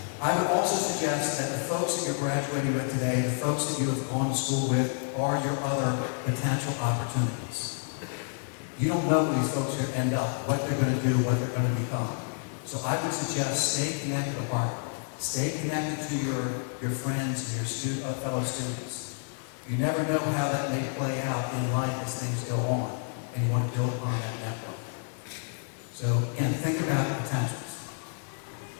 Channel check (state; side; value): silent; right; 58 dB below the other